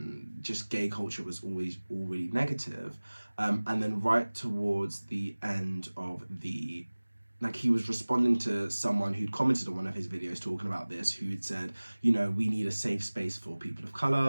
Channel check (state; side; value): inverted; both; correlation -1.00